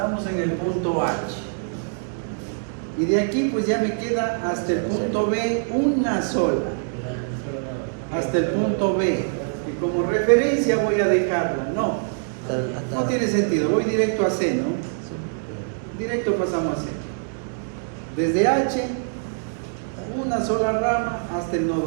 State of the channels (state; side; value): silent; left; digital silence